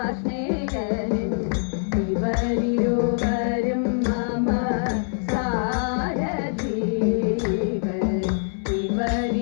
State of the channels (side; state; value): right; silent; 62 dB below the other